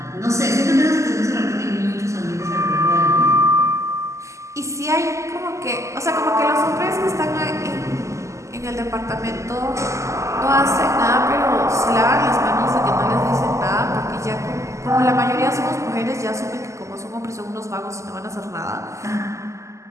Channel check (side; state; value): left; late; 0.14 ms